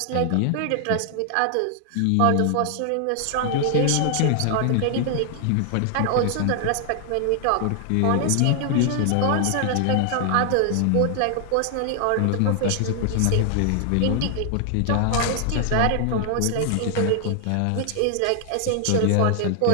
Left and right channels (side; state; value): both; different; correlation 0.00